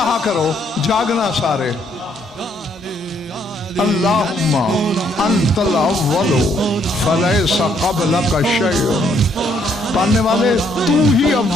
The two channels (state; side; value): normal; both; correlation 0.69